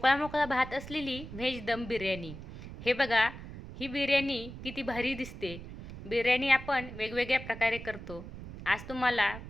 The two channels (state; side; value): noise; right; rumble, 12 dB below the sound